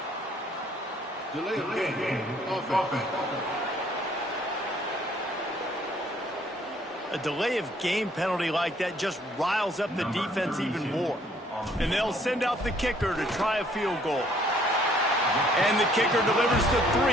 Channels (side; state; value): both; normal; correlation 0.62